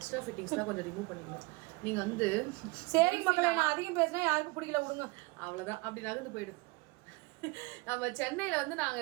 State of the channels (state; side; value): quieter; left; 25.7 dB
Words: ஃபிட்டிங்ஸ்லாம் கொஞ்சம் ரிமூவ் பண்ணிக்கணும். நீங்கள் வந்து சரி மக்களை, நான் அதிகம் பேசினா யாருக்கும் பிடிக்கல, விடுங்க. அவ்வளோதான், அப்படி நகர்ந்து போயிடும். நம்ம சென்னையில் வந்து நாங்கள்